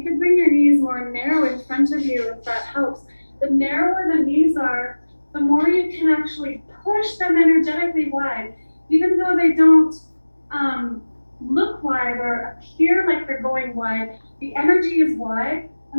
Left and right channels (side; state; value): both; inverted; correlation -1.00